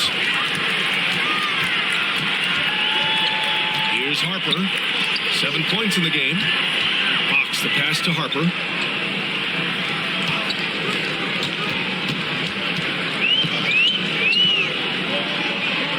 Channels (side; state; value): both; identical; correlation 1.00